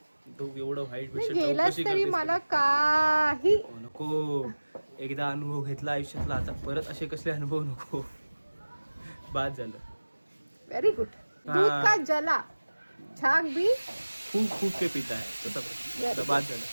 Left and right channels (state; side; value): inverted; both; correlation -1.00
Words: तो एवढं व्हाईट गेलास तरी मला काही नको. एकदा अनुभव घेतला आयुष्यातला, आता परत असे कसले अनुभव नको. बाद झालं. Very good. दूध का जला छाक भी खूप के पिता आहे तसं बाद झालं.